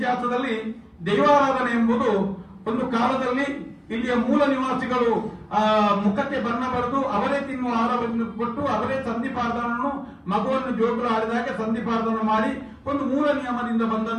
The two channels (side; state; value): both; identical; correlation 1.00